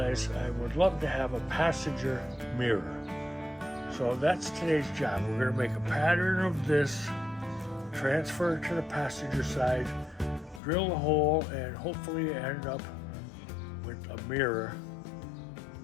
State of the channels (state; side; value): drops out; right; at 10.6 s